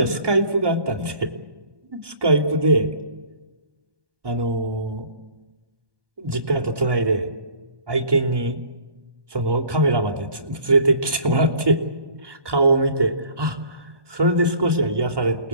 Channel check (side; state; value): left; late; 1.2 ms